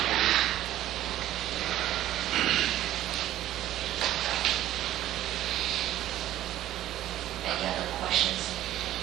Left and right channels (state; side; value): quieter; left; 13.4 dB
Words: Any other questions